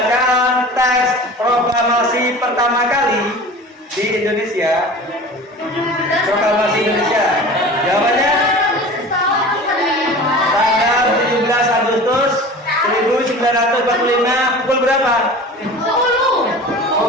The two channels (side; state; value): both; normal; correlation 0.38